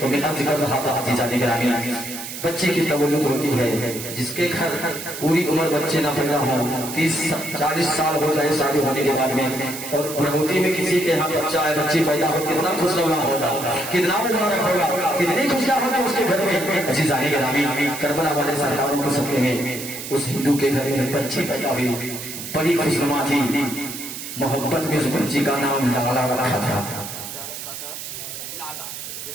میں عرض کر رہا تھا عزیزان گرامی، بچے کی تولد ہوتی ہے، جس کے گھر پوری عمر بچے نہ پیدا ہوں، 30-40 سال ہو جائے شادی ہونے کے بعد میں، اور بڑھوتی میں کسی کے یہاں بچہ ہے، بچی پیدا ہو، کتنا خوشنما ہوگا، کتنا مبارک ہوگا، کتنی خوشیاں ہوگی اس کے گھر میں۔ عزیزان گرامی، کربلا والے سرکاروں کے صدقے میں اس ہندو کے گھر میں بچی پیدا ہوئی، بڑی خوشنما تھی، محبت میں اس بچی کا نام لالا رکھا تھا۔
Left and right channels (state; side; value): noise; right; hiss, 9 dB below the sound